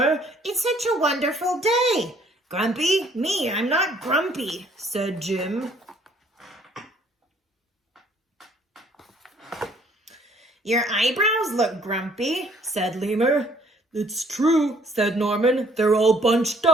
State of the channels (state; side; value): normal; both; correlation 0.61